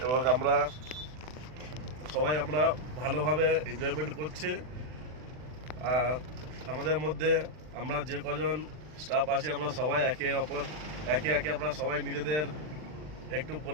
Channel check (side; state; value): left; late; 40 ms